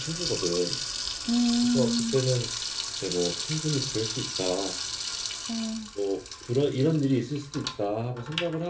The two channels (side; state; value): both; identical; correlation 1.00